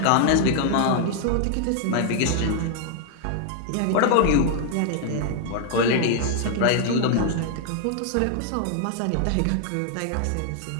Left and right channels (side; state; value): both; different; correlation 0.00